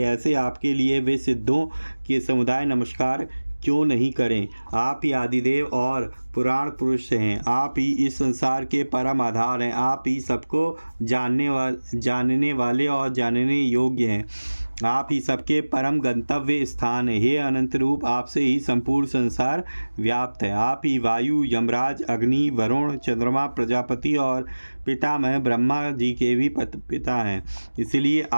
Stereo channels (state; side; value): inverted; both; correlation -1.00